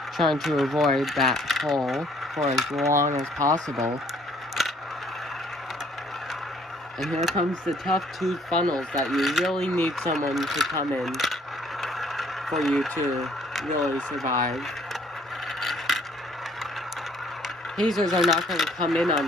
Trying to avoid that hole for as long as possible. And here comes the tough 2 funnels that you really need someone to come in for you to really survive. Hazers are not going to come in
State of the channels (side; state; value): both; normal; correlation 0.61